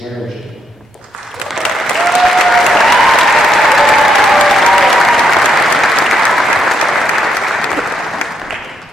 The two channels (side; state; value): both; normal; correlation 0.77